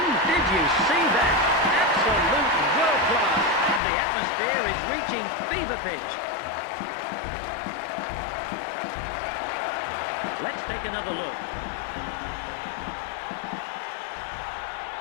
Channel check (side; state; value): right; drops out; at 3.8 s